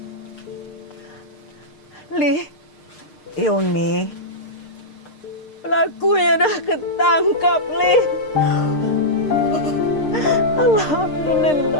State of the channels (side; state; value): right; late; 6.6 ms